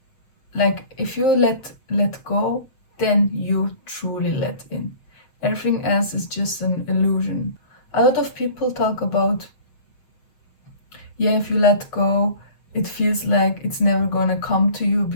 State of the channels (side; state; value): right; late; 7.2 ms